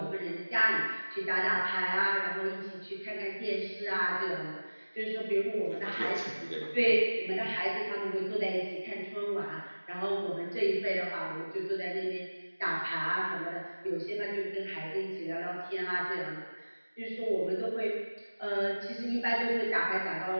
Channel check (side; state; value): both; inverted; correlation -1.00